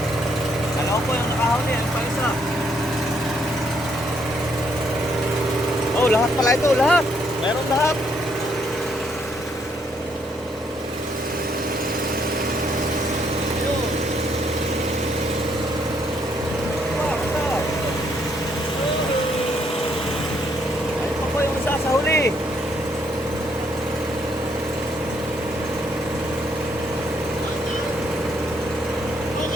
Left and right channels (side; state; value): both; normal; correlation 0.72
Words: Kalaw po yung nakahuli, ano pa isa? Oh, lahat pala ito, lahat. Meron lahat. Ayun. Ayun pa po yung isa sa huli.